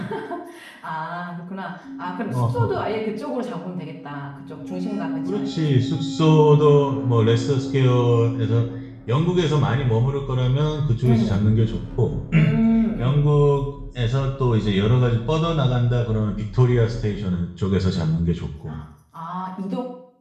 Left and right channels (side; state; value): both; identical; correlation 1.00